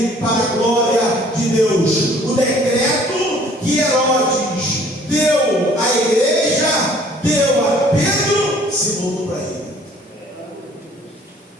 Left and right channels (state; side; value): normal; both; correlation 0.56